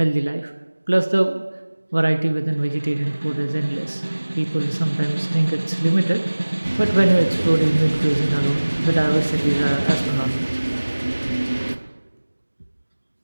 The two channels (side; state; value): both; inverted; correlation -1.00